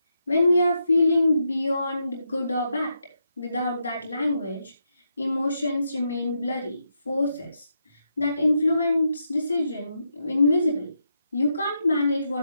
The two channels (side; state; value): both; inverted; correlation -0.83